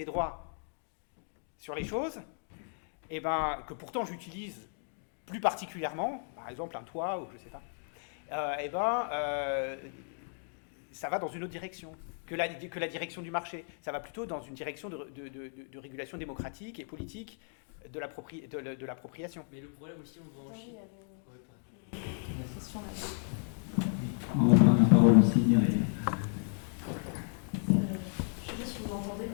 droits sur les choses, et ben, que pourtant j'utilise plus particulièrement, par exemple un toit, ou je ne sais pas, ça va dans une autre direction que la direction du marché. Ça va plutôt dans une direction de régulation démocratique et politique de l'appropriation. Mais le problème aussi, on va en Chine. On va prendre la parole aussi, Myriam. Je ne sais pas si vous m'entendez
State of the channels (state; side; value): silent; right; 55 dB below the other